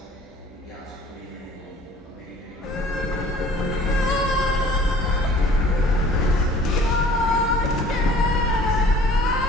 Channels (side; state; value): both; normal; correlation 0.51